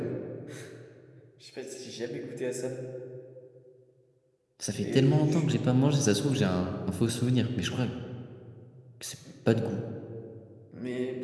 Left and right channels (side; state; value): both; identical; correlation 1.00